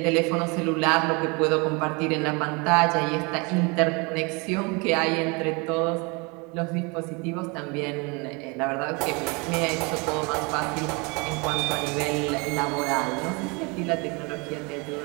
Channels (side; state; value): left; quieter; 29.3 dB